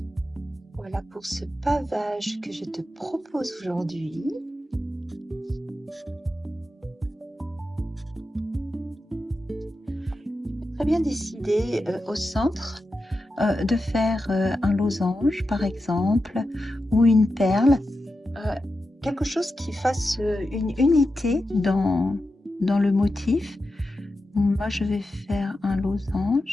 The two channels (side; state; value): both; normal; correlation 0.90